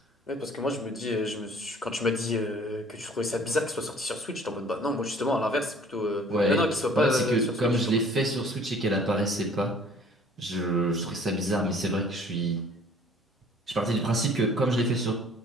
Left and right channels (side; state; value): both; normal; correlation 0.53